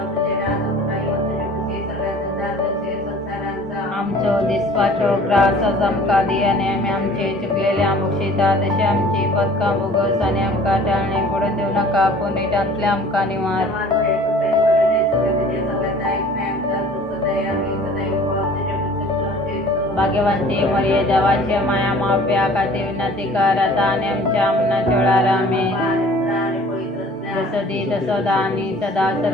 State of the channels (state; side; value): normal; both; correlation 0.49